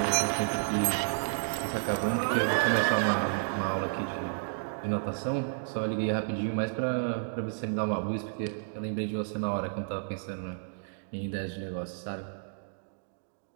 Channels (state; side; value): silent; left; digital silence